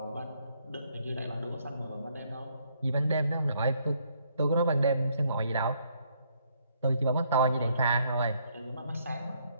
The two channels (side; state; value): both; inverted; correlation -0.69